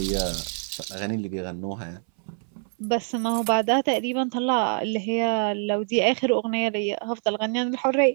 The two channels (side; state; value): left; silent; 62 dB below the other